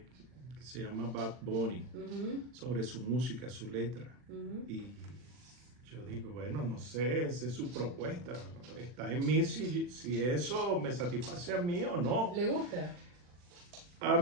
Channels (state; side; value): late; left; 40 ms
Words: que se llama Bad Bunny, sobre su música, su letra. Y yo digo, bueno, no sé, esa es su propuesta. Está en mí si eso me satisface a mí o no. ¿Le gusta? A